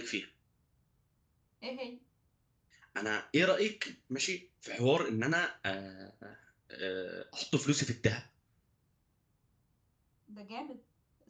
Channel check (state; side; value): identical; both; correlation 1.00